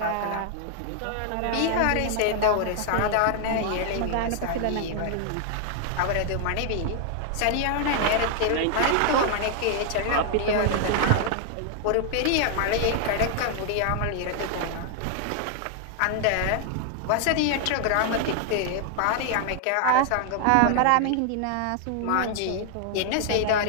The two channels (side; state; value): both; different; correlation 0.00